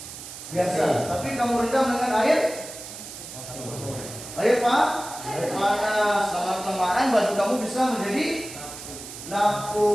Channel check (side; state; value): right; noise; hiss, 12 dB below the sound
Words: biasa. Tapi kamu rendam dengan air panas. Lama-kelamaan baju kamu bisa menjadi